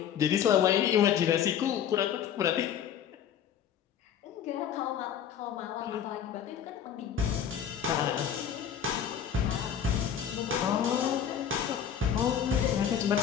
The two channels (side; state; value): right; quieter; 8.8 dB